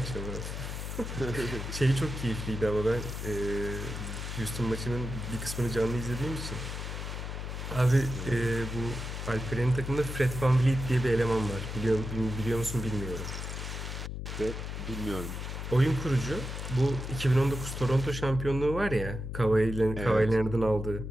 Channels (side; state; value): left; noise; hum, 6 dB below the sound